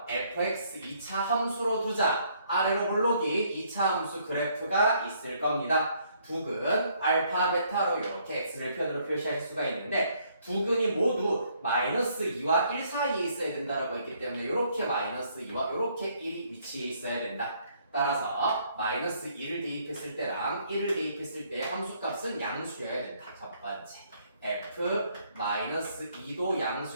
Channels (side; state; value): both; inverted; correlation -0.67